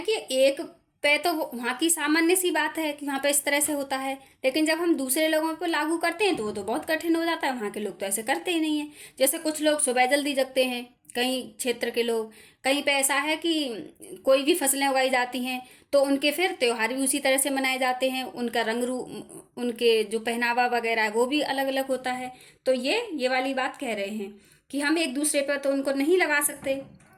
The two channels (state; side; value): identical; both; correlation 1.00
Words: कि एक पे तो वहाँ की सामान्य सी बात है कि वहाँ पे इस तरह से होता है, लेकिन जब हम दूसरे लोगों पर लागू करते हैं तो वो तो बहुत कठिन हो जाता है। वहाँ के लोग तो ऐसे करते ही नहीं है। जैसे कुछ लोग सुबह जल्दी जगते हैं, कहीं क्षेत्र के लोग, कहीं पे ऐसा है कि कोई भी फसलें उगाई जाती हैं तो उनके फिर त्योहार भी उसी तरह से मनाए जाते हैं, उनका रंग रूप, उनके जो पहनावा वगैरह है वो भी अलग अलग होता है। तो ये वाली बात कह रहे हैं कि हम एक दूसरे पर तो उनको नहीं लगा सकते।